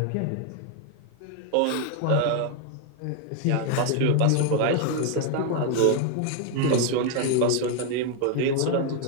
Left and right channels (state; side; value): different; both; correlation 0.01